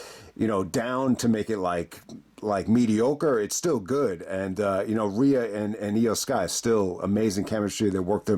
down to make it like mediocre. It's still good. And, Rhea and Io Sky, still amazing chemistry. They work their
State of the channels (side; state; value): both; identical; correlation 1.00